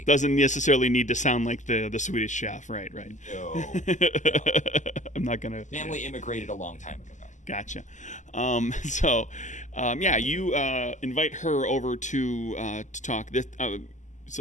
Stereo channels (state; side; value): late; right; 0.35 ms